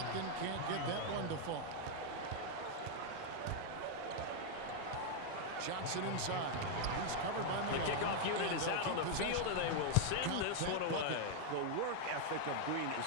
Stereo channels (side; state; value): both; different; correlation 0.00